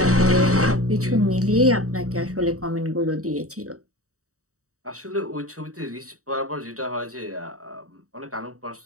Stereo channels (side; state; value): left; late; 0.65 ms